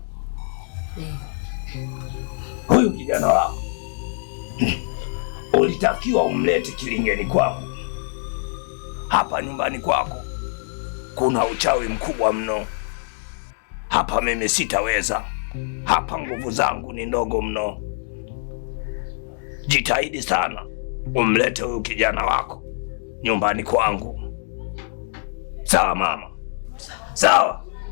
huyu kijana wako ulitakiwa umlete kilingeni kwako. Hapa nyumbani kwako kuna uchawi mkubwa mno. Hapa mimi sitaweza. Hapa nguvu zangu ni ndogo mno. Jitahidi sana umlete huyu kijana wako nyumbani kwangu. Sawa mama? Sawa,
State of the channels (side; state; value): right; silent; digital silence